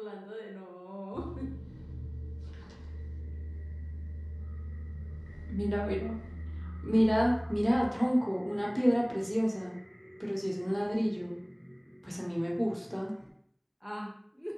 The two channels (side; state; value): both; identical; correlation 1.00